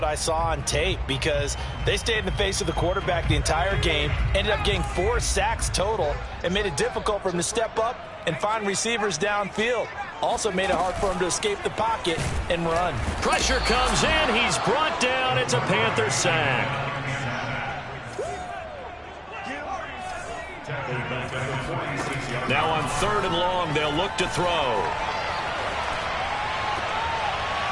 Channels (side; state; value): both; identical; correlation 1.00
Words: I saw on tape, because they stayed in the face of the quarterback the entire game, ended up getting 4 sacks total, and made it difficult for him to step up and find receivers downfield. Also made it hard for him to escape the pocket and run. Pressure comes in. He's brought down. It's a Panther sack. Now on 3rd and long, they'll look to throw.